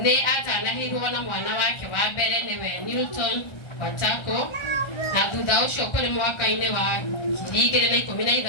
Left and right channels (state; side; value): late; right; 1.3 ms